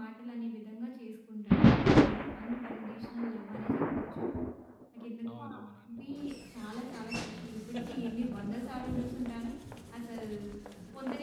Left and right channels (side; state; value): both; identical; correlation 1.00